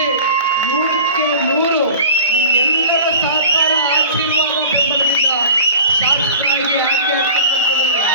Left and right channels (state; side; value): inverted; both; correlation -0.40